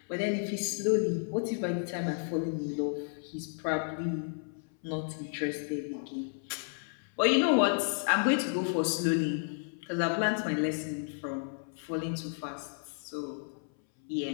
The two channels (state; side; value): silent; right; 56 dB below the other